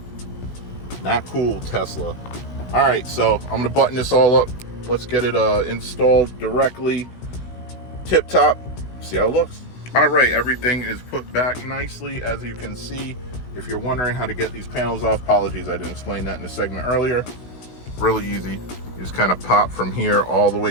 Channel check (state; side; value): late; right; 16 ms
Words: not cool, Tesla. All right, so I'm gonna button this all up. Let's get it installed directly. Tip top, see how it looks. All right, everything is put back nicely. As you can see, if you're wondering how to get these panels off, apologies, I didn't explain that in the segment earlier. Really easy. You just kind of pop from here all the